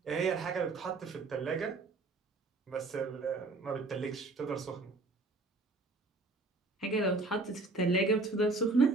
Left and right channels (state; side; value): quieter; left; 3.4 dB